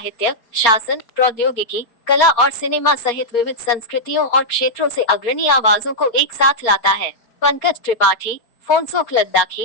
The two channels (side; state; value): right; late; 4.3 ms